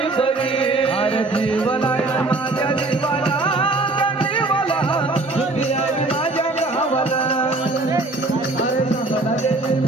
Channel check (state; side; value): quieter; left; 3.1 dB